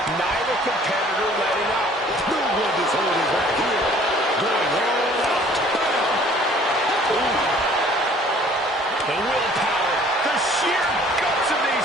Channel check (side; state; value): both; normal; correlation 0.54